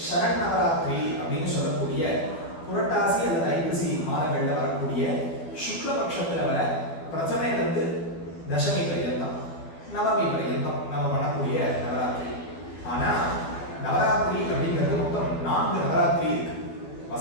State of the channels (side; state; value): right; late; 12 ms